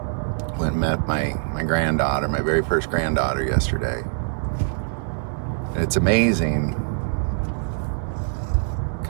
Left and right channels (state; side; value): silent; left; digital silence